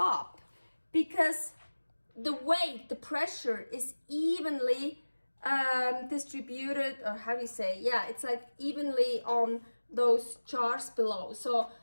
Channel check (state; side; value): inverted; both; correlation -1.00